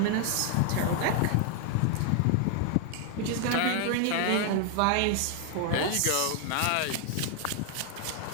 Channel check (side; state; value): both; different; correlation 0.00